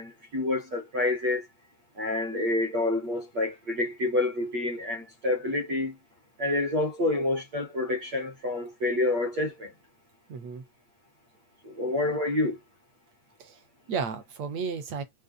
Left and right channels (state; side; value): late; left; 8.6 ms